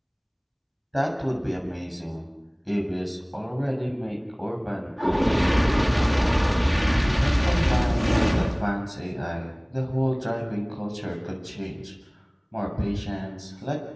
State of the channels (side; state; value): both; identical; correlation 1.00